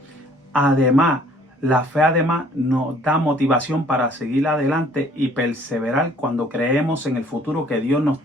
además, La fe además nos da motivación para seguir adelante y perseverar cuando creemos en el futuro que Dios nos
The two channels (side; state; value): both; normal; correlation 0.58